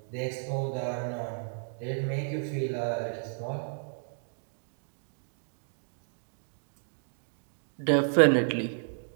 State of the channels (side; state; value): left; silent; digital silence